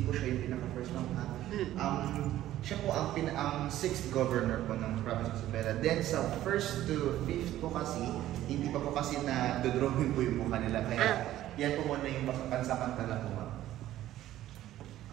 po siya yung pinaka-first ma'am. Siya po ang 6th governor po ng province of Isabela. Then sa 1st to 5th po kasi, hindi pa po kasi na dodrawing po yung mukha nila. Kaya yan po muna yung pansamantala po ma'am.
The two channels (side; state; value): left; quieter; 13.7 dB